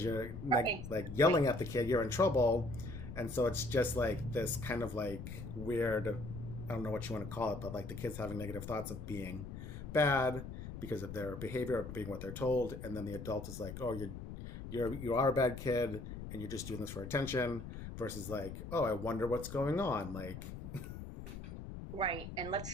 you're like yelling at the kid, you're in trouble, And so it's just like this kind of like weird, I don't know what you want to call it, but like the kids having negative thoughts of being bad because of their behavior, of being what they're told, and then the adult is like, oh, you are a bad kid and you're just doing this for attention, versus like, oh, I wonder what's going on. Like, Right. And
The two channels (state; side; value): noise; left; rumble, 9 dB below the sound